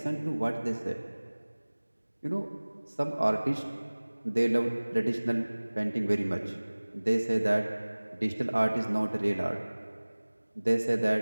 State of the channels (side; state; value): both; inverted; correlation -1.00